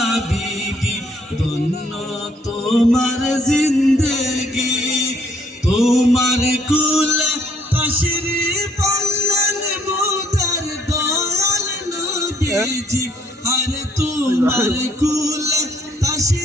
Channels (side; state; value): both; normal; correlation 0.66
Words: বিবি, ধন্য তোমার জিন্দেগি, তোমার কুলে তশরিফ আনলেন মোদের দয়াল নবীজি, আরে তোমার কুলে